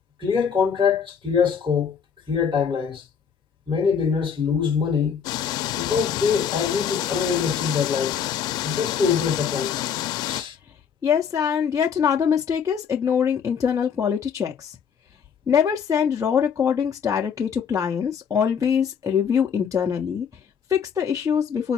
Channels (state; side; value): quieter; right; 7.1 dB